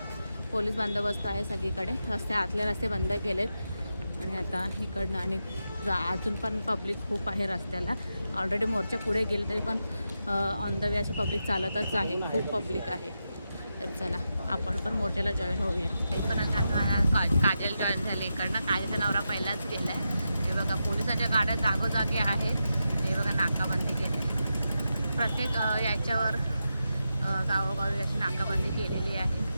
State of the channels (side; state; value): both; inverted; correlation -0.88